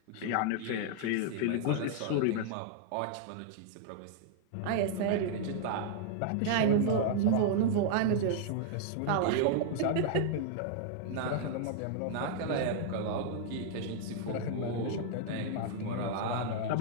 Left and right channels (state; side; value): different; both; correlation -0.01